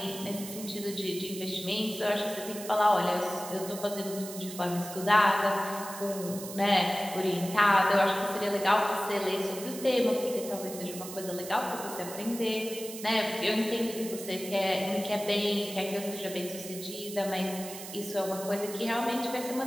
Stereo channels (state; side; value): noise; right; hiss, 11 dB below the sound